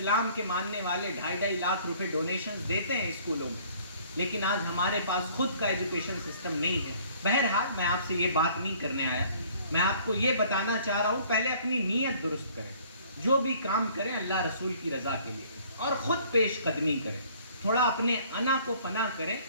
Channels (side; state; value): both; inverted; correlation -0.56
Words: کے ماننے والے 2.5 لاکھ روپے ڈونیشنز دیتے ہیں اسکولوں میں، لیکن آج ہمارے پاس خود کا ایجوکیشن سسٹم نہیں ہے. بہرحال میں آپ سے یہ بات نہیں کرنے آیا، میں آپ کو یہ بتانا چاہ رہا ہوں پہلے اپنی نیت درست کریں. جو بھی کام کریں اللہ رسول کی رضا کے لیے اور خود پیش قدمی کریں. تھوڑا اپنے انا کو فنا کریں